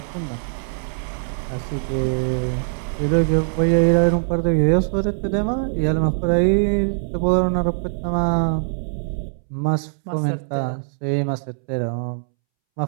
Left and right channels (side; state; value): left; silent; 64 dB below the other